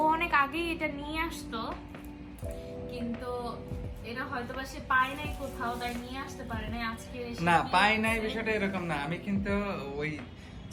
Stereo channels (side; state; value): both; identical; correlation 1.00